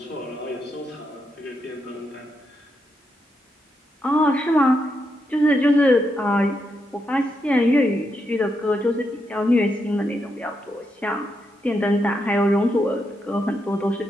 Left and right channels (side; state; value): both; normal; correlation 0.82